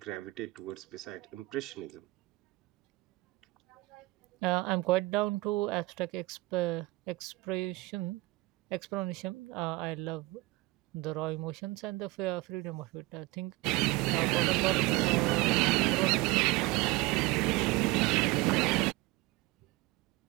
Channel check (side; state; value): left; quieter; 21.5 dB